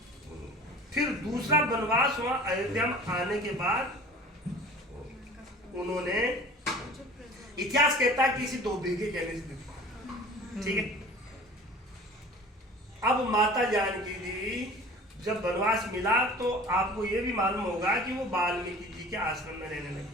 फिर दूसरा वनवास हुआ अयोध्या में आने के बाद उन्होंने, इतिहास कहता है किसी धोबी के कहने से दिया, ठीक है। अब माता जानकी जी जब वनवास मिला तो आपको ये भी मालूम होगा कि वो वाल्मीकि जी के आश्रम में रहने लगे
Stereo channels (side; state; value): both; normal; correlation 0.43